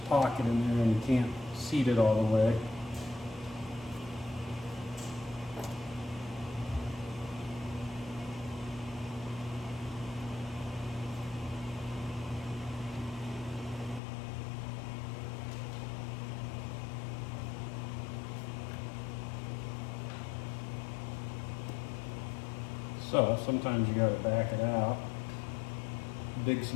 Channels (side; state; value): right; drops out; at 14.0 s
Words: pocket in there and you can't seat it all the way. So sometimes you gotta back it out, dig